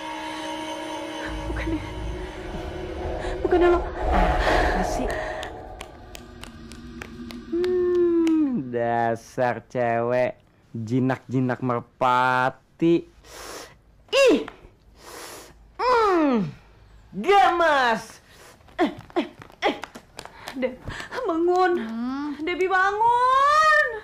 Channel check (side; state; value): both; identical; correlation 1.00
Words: Bukannya lo. Apa sih? Dasar cewek jinak-jinak merpati. Ih. Gemes. Deb, bangun. Debbie bangun.